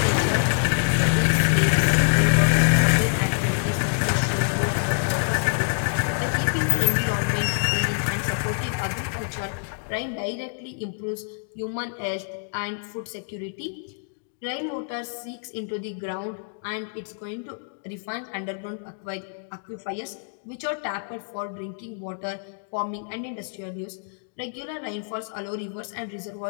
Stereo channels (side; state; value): right; silent; digital silence